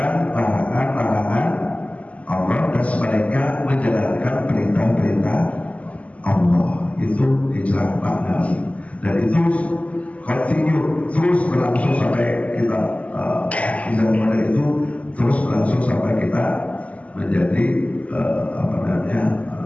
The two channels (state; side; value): late; right; 0.068 ms